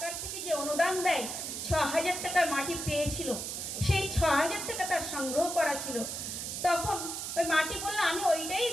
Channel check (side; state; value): right; noise; hiss, 5 dB below the sound